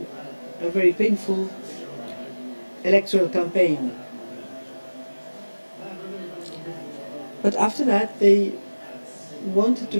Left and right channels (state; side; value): inverted; both; correlation -1.00